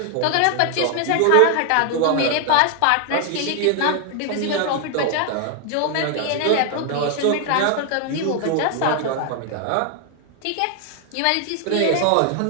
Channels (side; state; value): both; different; correlation 0.00